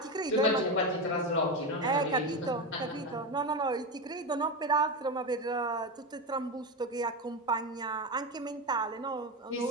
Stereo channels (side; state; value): both; normal; correlation 0.16